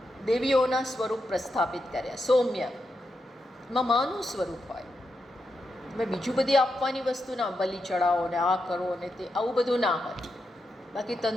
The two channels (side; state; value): both; normal; correlation 0.85